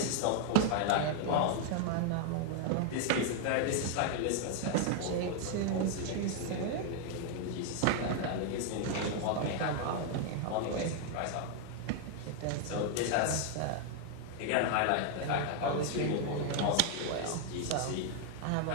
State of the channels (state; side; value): different; both; correlation 0.00